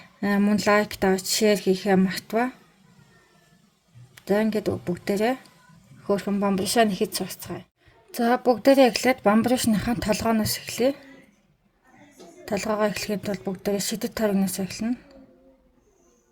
Мөн лайк даа, шеэр хийхээ мартава. За ингээд бүгдээрээ хөөрхөн бамбаршаа нэхэж сурцгаая. За бүгдээрээ эхлээд бамбаршныхаа толгооноос эхлэе. Толгоогоо эхлэхэд бол бүгдээрээ шидэт тойрогноос эхэлнэ.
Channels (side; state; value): both; identical; correlation 1.00